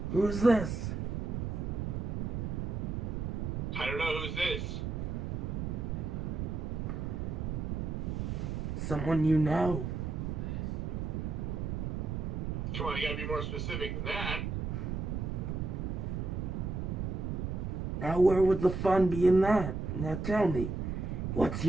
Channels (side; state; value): right; noise; rumble, 2 dB below the sound